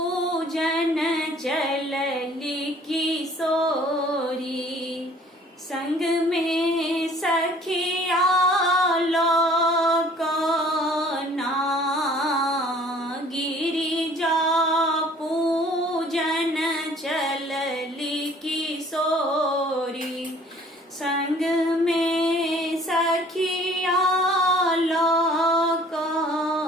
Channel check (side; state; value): both; normal; correlation 0.54